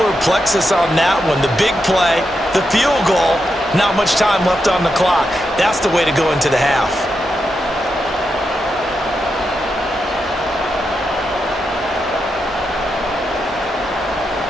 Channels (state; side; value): normal; both; correlation 0.85